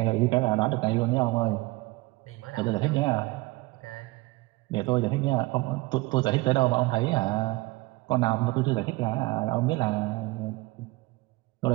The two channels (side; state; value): left; quieter; 21.6 dB